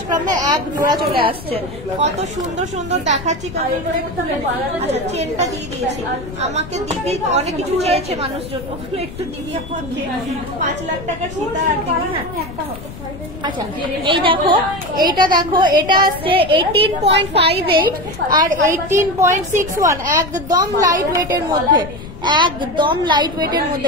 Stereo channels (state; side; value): noise; left; rumble, 13 dB below the sound